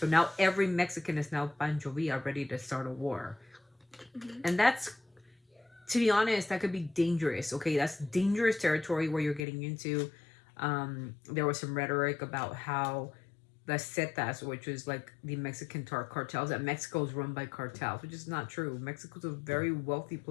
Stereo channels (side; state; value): right; drops out; at 9.4 s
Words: now every Mexican is now Pancho Villa, ready to start a war. And that's, to be honest, that could be dangerous. Okay, that's dangerous territory where you're getting into. There was some rhetoric about how the Zetas, which is like the Mexican cartels, that Mexico is run by cartels, which is not true. Mexico's a very wealthy